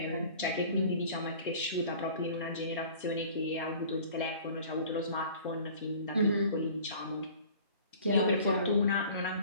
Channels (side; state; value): both; inverted; correlation -0.47